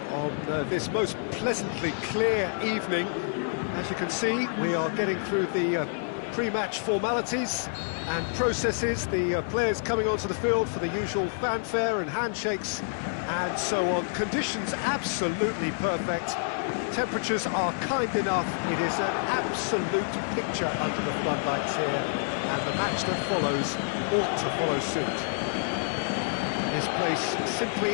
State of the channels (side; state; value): right; silent; digital silence